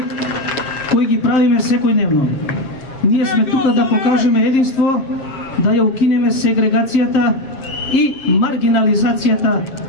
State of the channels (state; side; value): late; right; 7.5 ms